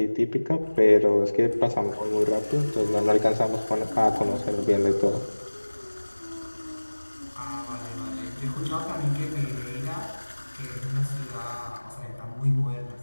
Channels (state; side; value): inverted; both; correlation -1.00